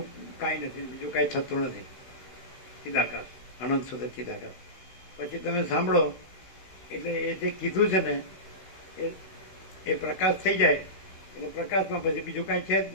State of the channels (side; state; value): right; late; 16 ms